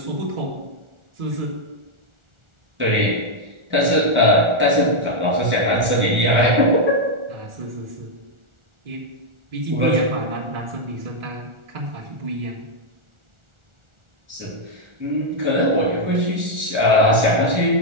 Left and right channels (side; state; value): left; late; 1.4 ms